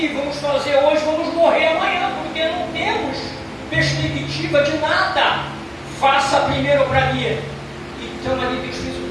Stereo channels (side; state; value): both; identical; correlation 1.00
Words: vamos fazer hoje, vamos morrer amanhã, porque não temos perspectiva de nada. Faça primeiro para mim. Então ali Deus fez